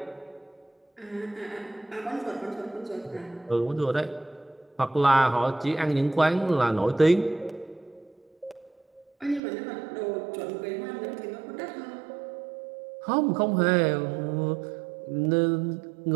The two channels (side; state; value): left; drops out; at 9.4 s